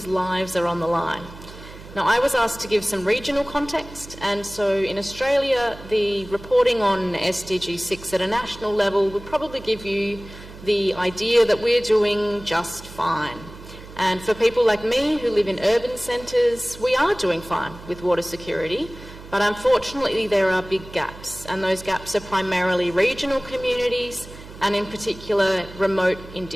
lives are on the line. Now, I was asked to give some regional context, and so in Australia, the reporting on SDG 6 at a national level would probably give you the idea that we're doing just fine. And for people like me who live in urban centres, we are doing fine with water security, but unfortunately there are big gaps, and those gaps are primarily regional communities and in particular remote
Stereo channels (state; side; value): noise; right; hum, 16 dB below the sound